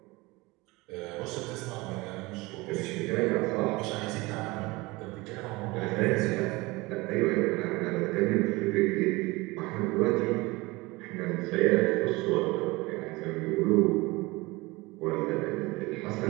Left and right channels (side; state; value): left; quieter; 22.7 dB